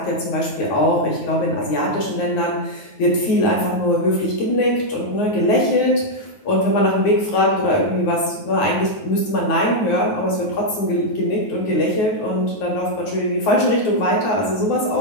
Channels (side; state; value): right; late; 9.5 ms